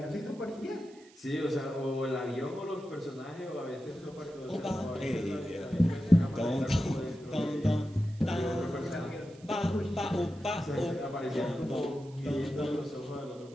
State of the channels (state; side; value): noise; right; hiss, 26 dB below the sound